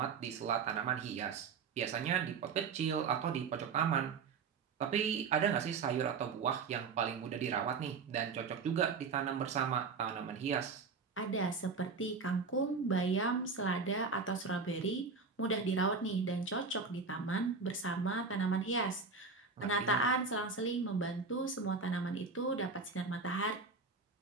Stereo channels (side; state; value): left; quieter; 4.9 dB